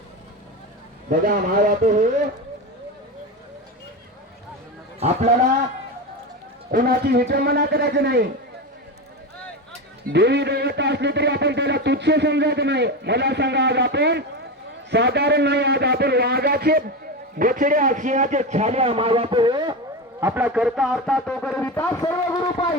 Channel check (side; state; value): both; normal; correlation 0.20